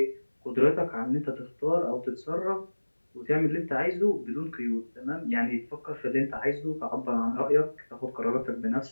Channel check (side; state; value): both; inverted; correlation -1.00